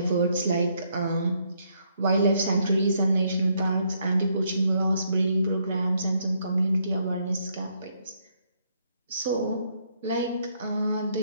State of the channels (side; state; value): both; inverted; correlation -0.73